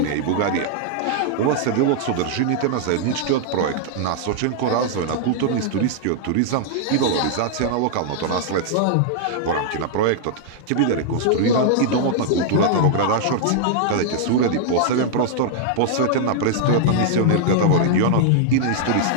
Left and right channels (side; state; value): both; different; correlation -0.01